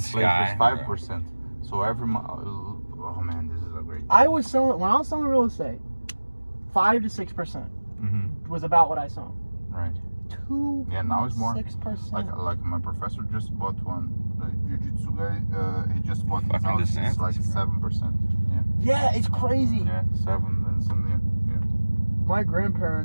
sky. is 5%. So every month, oh man, this is a great. When I was selling real estate, 5 to 6% was about what I sold. Right. 2. Yeah, now it's more. 6%. Like my professor just bought one. The jiu-jitsu guy, he just bought his Fucking house. It's like DeSantis, 7%. Yeah, it's crazy. Yeah, 7 and something. Yeah. My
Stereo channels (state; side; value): inverted; both; correlation -1.00